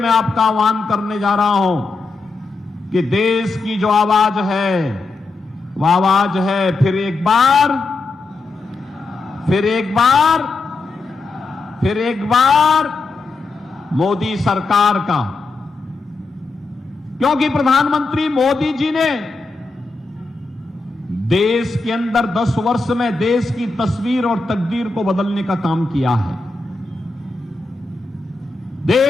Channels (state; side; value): quieter; right; 3.6 dB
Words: आपका आह्वान करने जा रहा हूं कि देश की जो आवाज है वह आवाज है फिर एक बार, फिर एक बार, फिर एक बार मोदी सरकार का। क्योंकि प्रधानमंत्री मोदी जी ने देश के अंदर 10 वर्ष में देश की तस्वीर और तकदीर को बदलने का काम किया है।